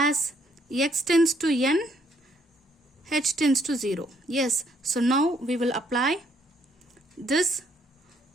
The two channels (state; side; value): normal; both; correlation 0.68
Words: x tends to n, h tends to 0. Yes. So now we will apply this